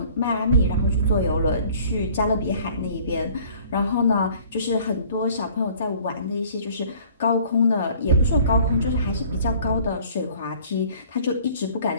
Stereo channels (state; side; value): inverted; both; correlation -0.53